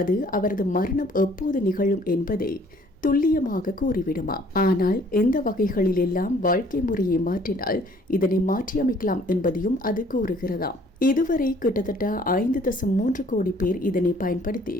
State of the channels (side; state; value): both; normal; correlation 0.58